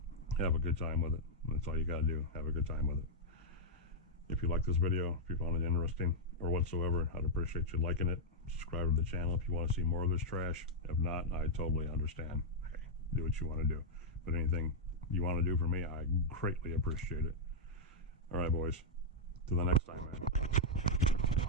Have a good time with it. That's all you gotta do. Have a good time with it. If you like this video, if you found it interesting or whatsoever, I'd appreciate you liking it. Subscribe to the channel if you want to see more of this trash. If not, I totally understand. Hey, do what you want to do. But anything you want to do for me, I greatly appreciate it. All right, boys. Till the next time, man.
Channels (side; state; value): both; normal; correlation -0.06